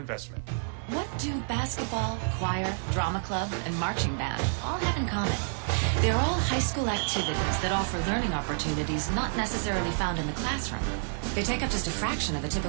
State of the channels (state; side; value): silent; left; digital silence